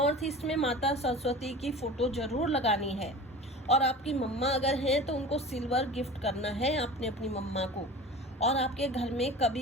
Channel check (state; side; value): normal; both; correlation 0.36